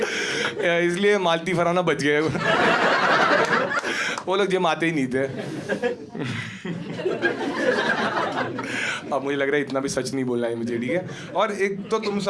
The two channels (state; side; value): identical; both; correlation 1.00